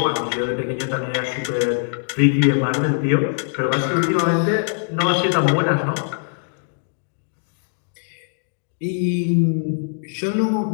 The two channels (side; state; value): right; silent; digital silence